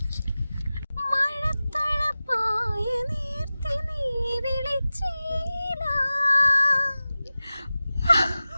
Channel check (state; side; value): inverted; both; correlation -0.96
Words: മഴത്തഴപ്പായ നീർത്തി നീ വിളിച്ചീല.